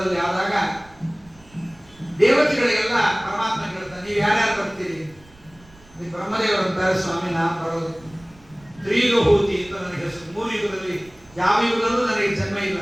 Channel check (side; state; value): right; noise; rumble, 26 dB below the sound